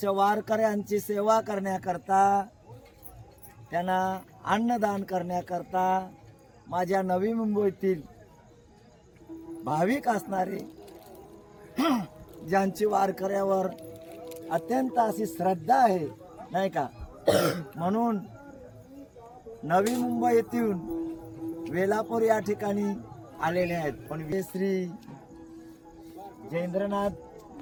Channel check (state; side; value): identical; both; correlation 1.00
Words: वारकऱ्यांची सेवा करण्याकरता, त्यांना अन्नदान करण्याकरता माझ्या नवी मुंबईतील भाविक असणारे ज्यांची वारकऱ्यावर अत्यंत अशी श्रद्धा आहे नाही का, म्हणून नवी मुंबई येथून वेलापूर या ठिकाणी आलेले आहेत. पण श्री जयेंद्रनाथ